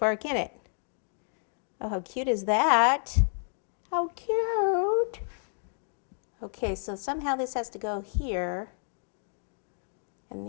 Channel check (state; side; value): silent; right; digital silence